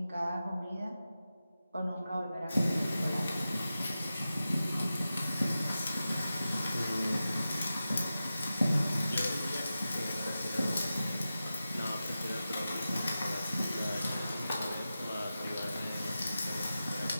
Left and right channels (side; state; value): both; inverted; correlation -0.93